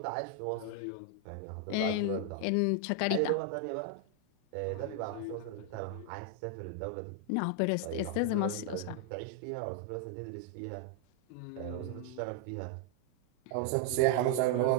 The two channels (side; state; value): both; different; correlation 0.00